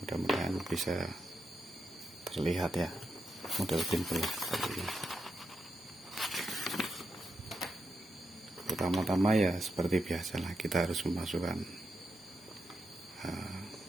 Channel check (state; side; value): normal; both; correlation 0.85